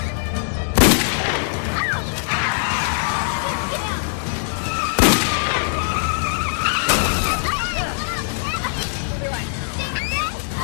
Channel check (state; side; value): silent; right; digital silence